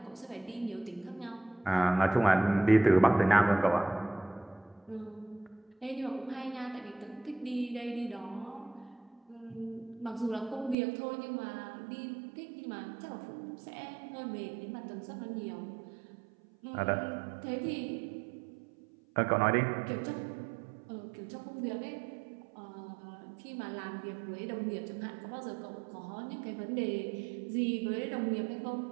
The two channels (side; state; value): left; drops out; at 10.8 s